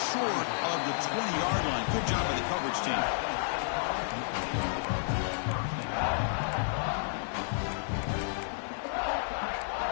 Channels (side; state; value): right; silent; 57 dB below the other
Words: short of the 20-yard line. Good job by the coverage team.